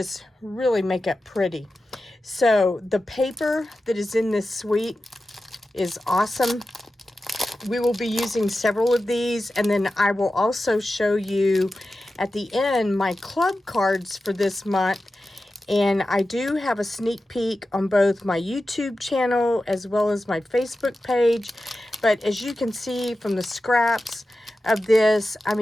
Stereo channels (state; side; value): normal; both; correlation 0.93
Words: really make it pretty. So the paper that is in this suite is awesome. We will be using several of these, and then I will also show you at the end my club cards for this month. And I do have a sneak peek on both my YouTube channel as well as my Facebook page. But as you can see from the scraps of this, I